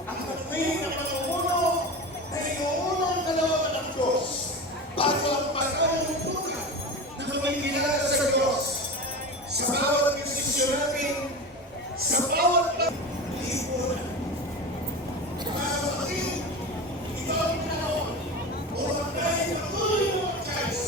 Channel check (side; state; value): both; normal; correlation 0.28